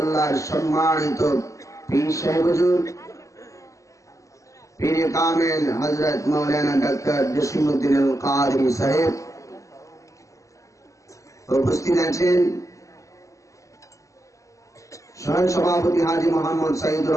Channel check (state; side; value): late; right; 0.16 ms